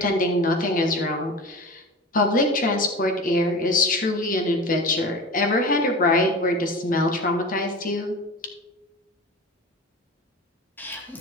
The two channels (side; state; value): both; normal; correlation 0.32